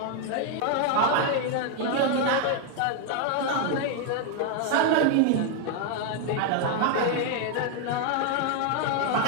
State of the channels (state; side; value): different; both; correlation 0.00